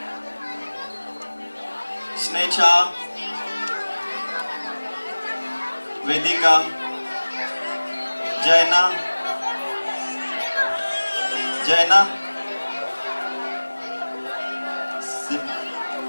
स्नेचा, वेदिका, जैना, जैना,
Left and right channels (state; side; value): inverted; both; correlation -1.00